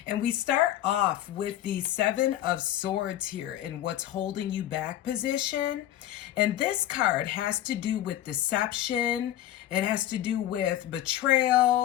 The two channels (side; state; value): right; quieter; 12.8 dB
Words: And we start off with the Seven of Swords here in what's holding you back position. And this card has to do with deception. It has to do with